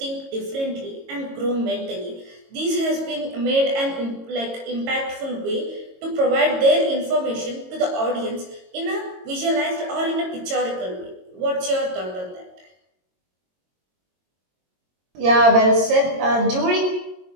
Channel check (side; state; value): left; late; 22 ms